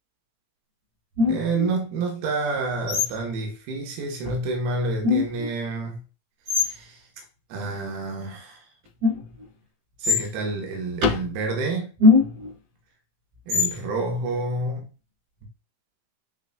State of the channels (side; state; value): left; late; 18 ms